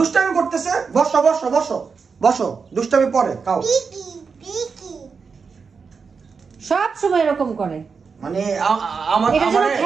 করতেছে বসো বসো বসো বসো দুষ্টামি পরে খাও সব সময় এরকম করে মানে আমার এটা যেন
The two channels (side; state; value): left; quieter; 5.4 dB